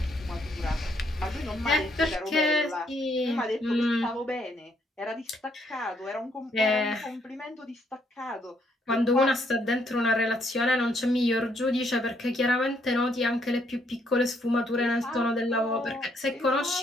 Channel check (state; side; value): normal; both; correlation 0.71